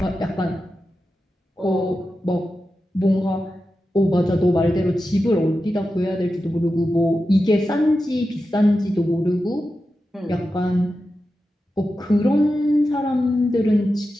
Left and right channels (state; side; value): normal; both; correlation 0.91